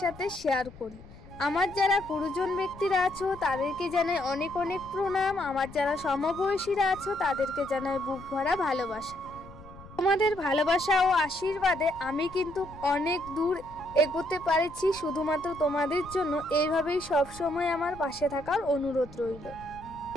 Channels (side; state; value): left; noise; rumble, 19 dB below the sound